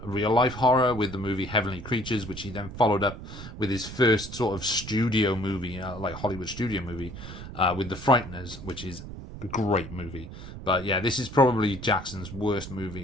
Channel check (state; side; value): noise; right; rumble, 11 dB below the sound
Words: real life horror with the movie Heavenly Creatures, which he then followed up with his first sort of studio movie, like Hollywood studio movie, with The Frighteners, which is a great movie. But yeah, this is probably Jackson's worst